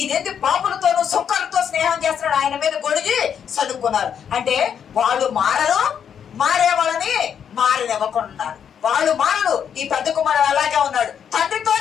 పాపులతోనూ సుక్కలతో స్నేహం చేస్తున్నాడు, ఆయన మీద గొడిగి చదువుకున్నారు. అంటే వాళ్ళు మారరు, మారే వాళ్ళని మారనివ్వకున్నారు. వాళ్ళు మారరు. ఈ పెద్ద కుమారుడు అలాగే ఉన్నాడు,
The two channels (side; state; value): right; quieter; 8.1 dB